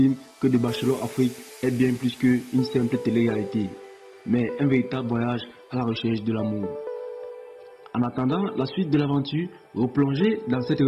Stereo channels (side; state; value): both; identical; correlation 1.00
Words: que The Bachelor Afrique est bien plus qu'une simple télé-réalité, mais un véritable voyage à la recherche de l'amour. En attendant la suite de l'aventure, replongez dans cette